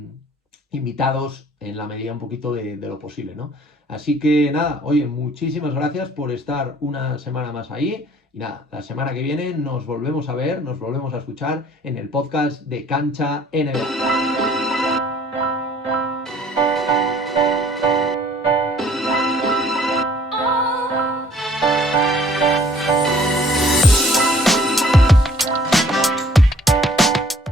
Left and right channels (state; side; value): normal; both; correlation 0.56